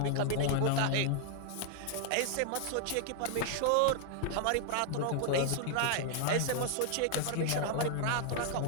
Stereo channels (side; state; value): both; different; correlation 0.00